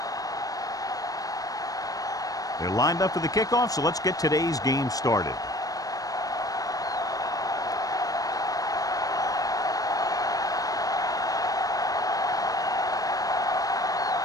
They're lined up for the kickoff, so let's get today's game started.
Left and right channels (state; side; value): late; right; 0.18 ms